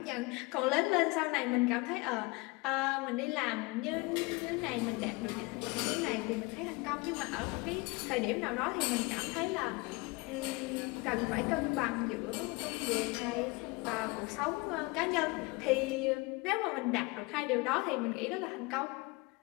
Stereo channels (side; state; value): right; quieter; 25.3 dB